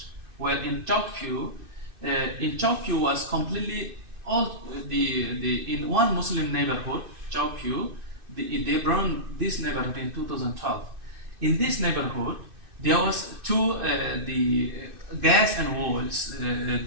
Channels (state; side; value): late; left; 2.6 ms